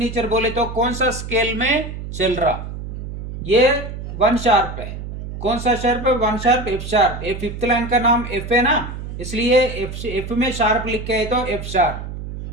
बोले तो कौन सा स्केल में चल रहा, ये वन शार्प है। कौन सा शार्प है? One sharp, F sharp. ये फिफ्थ लाइन का नाम एफ है ना, इसलिए एफ में शार्प लिखे है तो एफ शार्प।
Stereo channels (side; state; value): right; noise; hum, 8 dB below the sound